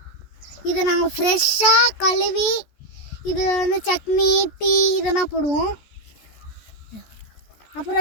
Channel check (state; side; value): late; right; 14 ms